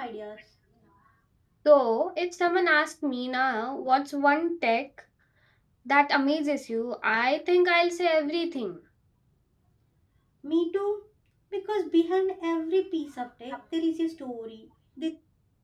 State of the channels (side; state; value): both; identical; correlation 1.00